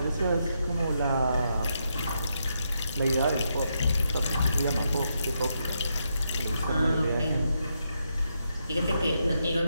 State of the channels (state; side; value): inverted; both; correlation -0.81